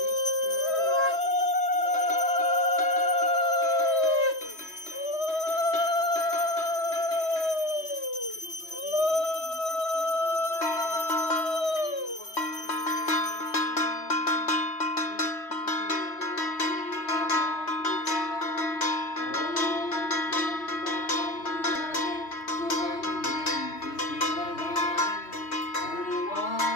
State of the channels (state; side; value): late; right; 3.1 ms